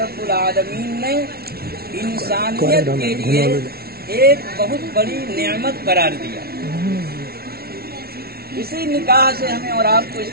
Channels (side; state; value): left; late; 0.44 ms